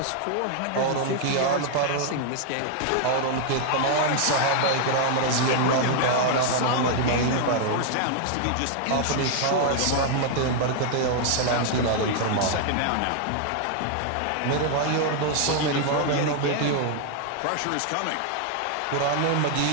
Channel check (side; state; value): both; different; correlation 0.00